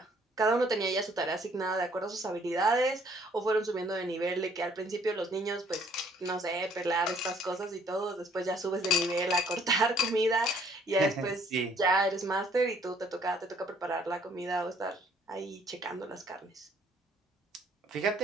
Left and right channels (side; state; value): both; normal; correlation 0.61